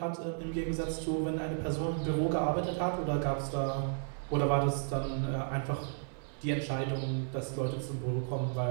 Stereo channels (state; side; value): silent; left; digital silence